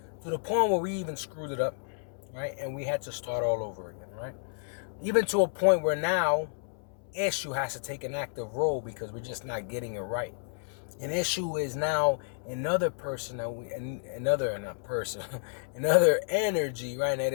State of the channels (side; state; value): right; silent; 57 dB below the other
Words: To the point where we even screwed it up, right? And we had to start all over again, right? Even to a point where now Eshu has to take an active role because we're just not getting it right. And Eshu is now another person another energy, right?